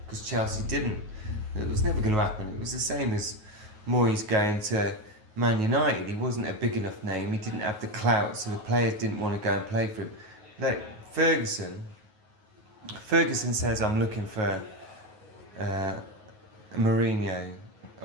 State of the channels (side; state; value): left; late; 9.4 ms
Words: because Chelsea didn't. It was never going to happen. It was the same as Moyes going to Man United. He wasn't a big enough name. He didn't have the clout, so the players didn't want to go and play for him. Like Ferguson says, I'm looking for Mourinho,